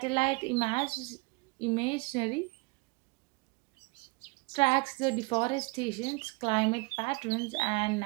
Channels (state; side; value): quieter; left; 27.9 dB